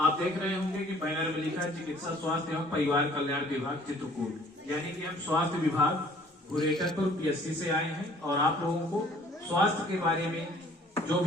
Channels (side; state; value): both; normal; correlation 0.55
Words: देख रहे होंगे कि बैनर में लिखा है चिकित्सा स्वास्थ्य एवं परिवार कल्याण विभाग चित्रकूट, यानी कि हम स्वास्थ्य विभाग गुरेटरपुर पीएससी से आए हैं और आप लोगों को स्वास्थ्य के बारे में जो